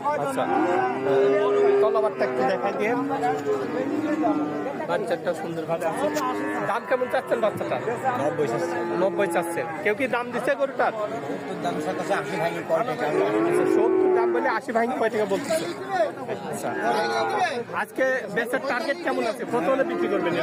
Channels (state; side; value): identical; both; correlation 1.00